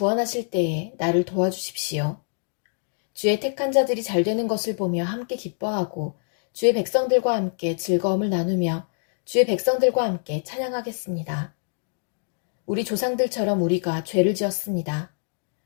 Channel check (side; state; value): right; silent; digital silence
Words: 때에 나를 도와주십시오. 주의 택한 자들이 잘 되는 것을 보며 함께 기뻐하고 주의 백성들과 함께 즐거움을 나누며 주의 백성들과 함께 찬양하겠습니다. 우리 조상들처럼 우리가 죄를 지었습니다.